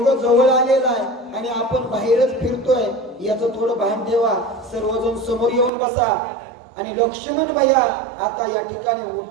जवळ आलेला आहे आणि आपण बाहेरच फिरतोय याचं थोडं भान ठेवा. सर्वजण समोर येऊन बसा. आणि लक्ष्मण भैया आता या ठिकाणी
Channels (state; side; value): drops out; left; at 5.7 s